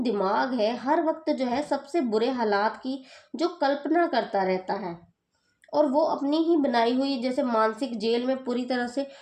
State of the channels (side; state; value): both; identical; correlation 1.00